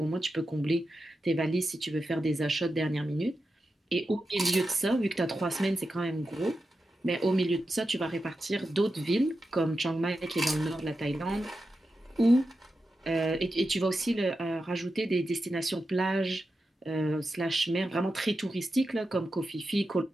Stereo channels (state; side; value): normal; both; correlation 0.90